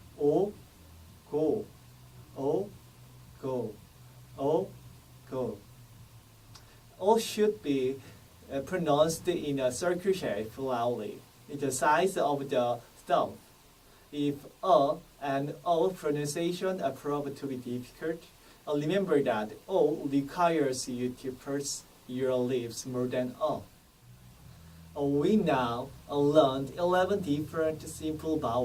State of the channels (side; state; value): both; identical; correlation 1.00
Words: O, go, O, go, O, go. O should be pronounced in a circle shape loudly. It's the size of the thumb. If a and o pronunciation are proved to be difficult, remember that o requires you to purse your lips more than a. We now learned 11 different simple